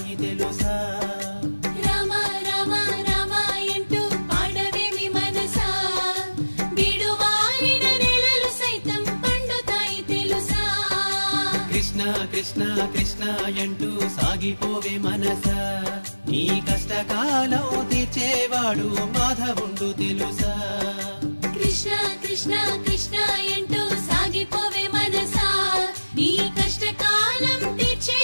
తెలుసా రామ రామ రామాయంటూ పాడవేమి మనసా బీడువారిన నేలలు సైతం పండుతాయి తెలుసా కృష్ణ కృష్ణ కృష్ణ అంటూ సాగిపోవే మనస నీ కష్టకాలం తీర్చేవాడు మాధవుండు తెలుసా కృష్ణ కృష్ణ కృష్ణ అంటూ సాగిపోవే మనసా నీ కష్టకాలం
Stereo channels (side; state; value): both; inverted; correlation -1.00